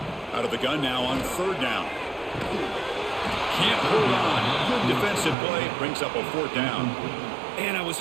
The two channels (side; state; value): left; drops out; at 5.4 s